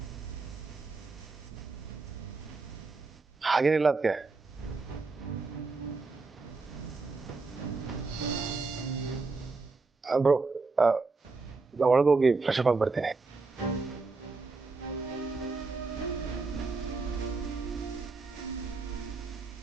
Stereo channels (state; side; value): quieter; left; 3.9 dB